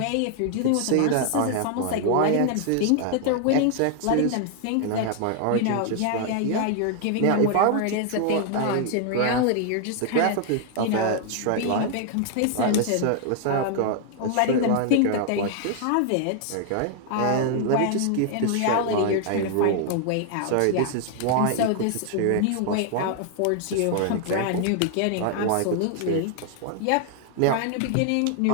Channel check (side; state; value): both; different; correlation 0.00